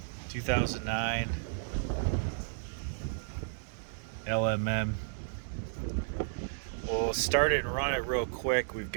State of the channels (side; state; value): left; silent; digital silence